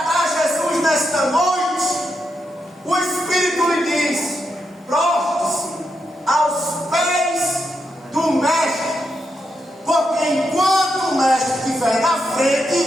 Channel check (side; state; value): both; normal; correlation 0.84